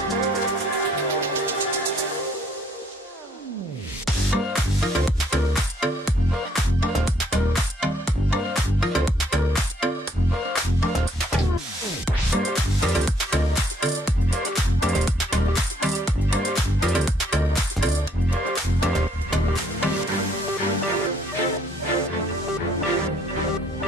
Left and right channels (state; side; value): normal; both; correlation 0.66